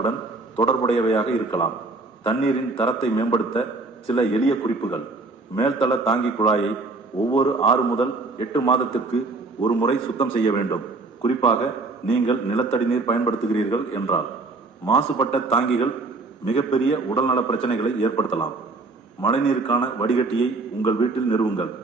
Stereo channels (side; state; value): left; quieter; 3.6 dB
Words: தொடர்புடையவையாக இருக்கலாம். தண்ணீரின் தரத்தை மேம்படுத்த சில எளிய குறிப்புகள். மேல்தள தாங்கி குழாயை ஒவ்வொரு 6 முதல் 8 மாதத்திற்கு ஒரு முறை சுத்தம் செய்ய வேண்டும். குறிப்பாக நீங்கள் நிலத்தடி நீர் பயன்படுத்துகிறீர்கள் என்றால். மாசுபட்ட தாங்கிகள் மிகப்பெரிய உடல்நல பிரச்சனைகளை ஏற்படுத்தலாம். மழைநீருக்கான வடிகட்டியை உங்கள் வீட்டில் நிறுவுங்கள்.